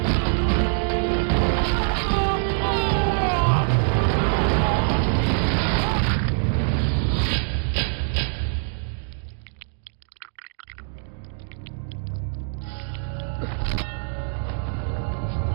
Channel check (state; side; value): silent; left; digital silence